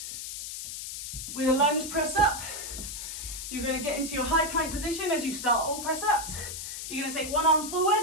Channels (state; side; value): noise; left; hiss, 7 dB below the sound